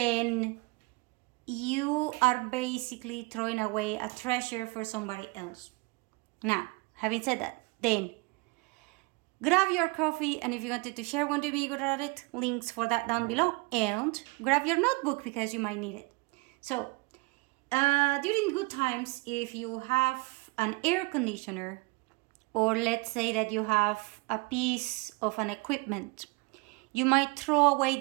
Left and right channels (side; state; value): left; quieter; 26.8 dB